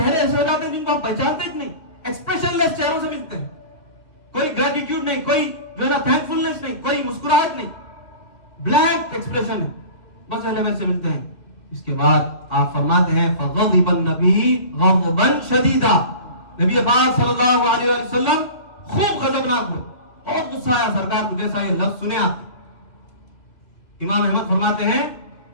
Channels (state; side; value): late; right; 2.6 ms